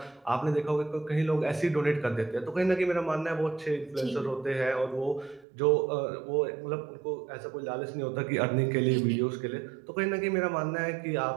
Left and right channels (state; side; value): drops out; left; at 5.5 s